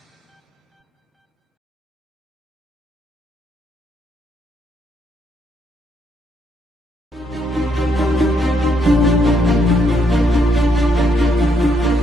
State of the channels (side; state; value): both; normal; correlation 0.74